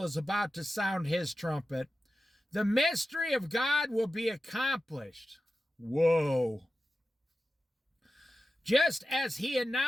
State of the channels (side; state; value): both; normal; correlation 0.93